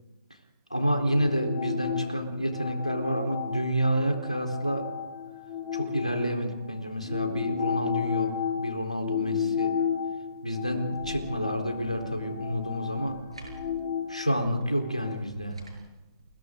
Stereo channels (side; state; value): both; inverted; correlation -0.74